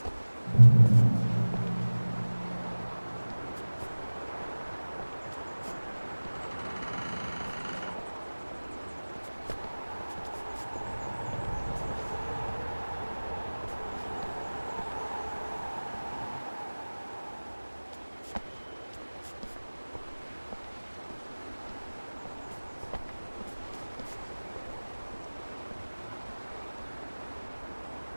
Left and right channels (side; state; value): both; inverted; correlation -1.00